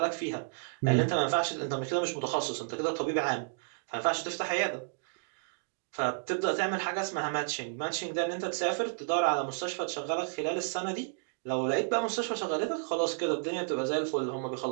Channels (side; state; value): left; silent; digital silence